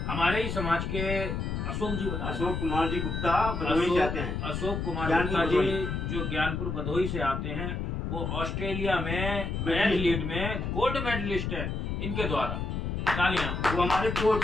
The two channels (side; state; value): left; noise; rumble, 3 dB below the sound